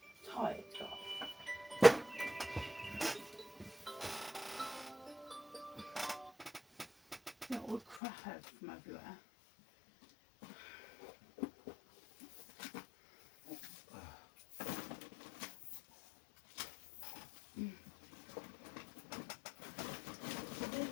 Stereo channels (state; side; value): drops out; right; at 8.0 s